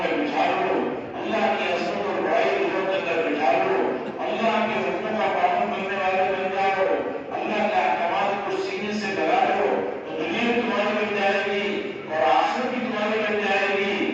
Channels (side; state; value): both; identical; correlation 1.00